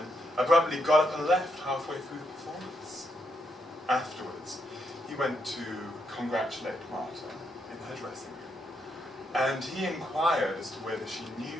abruptly got up and left halfway through the performance. Afterwards, he went to congratulate Marta in her dressing room, and he inquired as to whether she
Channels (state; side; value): normal; both; correlation 0.79